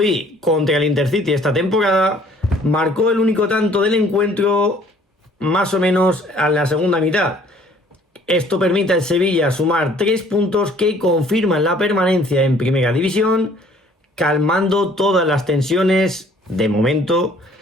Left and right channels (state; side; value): normal; both; correlation 0.57